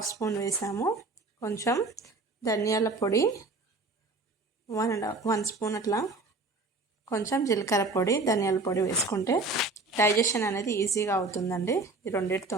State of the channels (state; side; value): quieter; left; 3.4 dB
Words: స్పూన్ వేసాము. కొంచెం ధనియాల పొడి 1 స్పూన్ అట్లా, కొంచెం జీలకర్ర పొడి, ధనియాల పొడి వేసుకుంటే డైజెషన్ అనేది ఈజీగా అవుతుందండి. ఈ